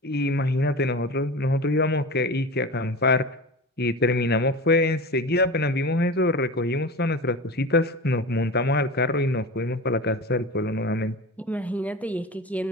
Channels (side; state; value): both; normal; correlation 0.30